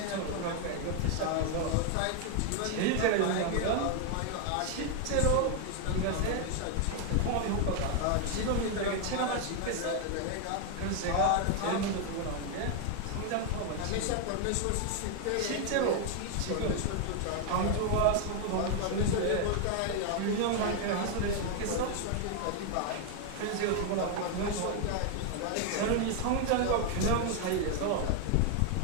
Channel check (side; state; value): both; different; correlation 0.01